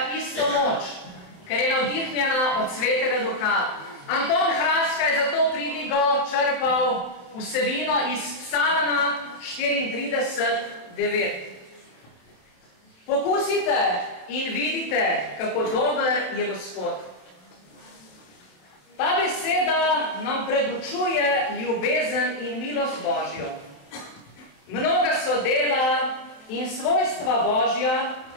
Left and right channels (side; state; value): right; late; 27 ms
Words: isto moč, ker je navdihnjena od Svetega Duha. Anton Hraska je zato pridigo črpal vsebino iz Psalma 34:9. Pokusite in vidite, kako dober je Gospod. Ta beseda nam predučuje ljubezen in milost Božjo. Mnoga so dela in svojstva Božja,